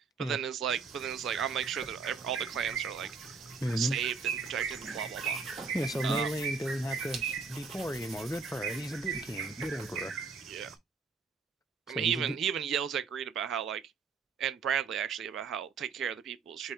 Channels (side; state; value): left; quieter; 5.0 dB